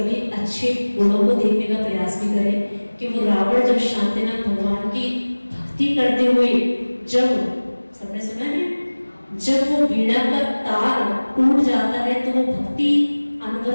अच्छे गुणों को देखने का प्रयास भी करें कि वो रावण जब शांतिनाथ भगवान की भक्ति करते हुए, जब सबने सुना है, जब वो वीणा का तार टूट जाता है तो वो भक्ति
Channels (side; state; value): both; inverted; correlation -1.00